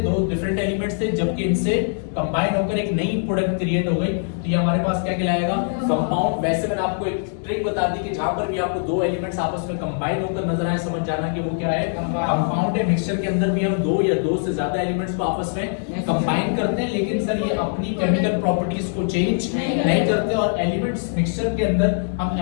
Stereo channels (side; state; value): right; silent; digital silence